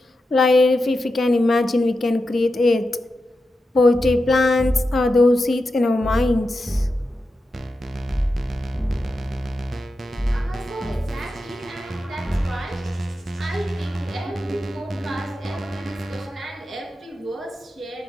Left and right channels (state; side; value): normal; both; correlation 0.90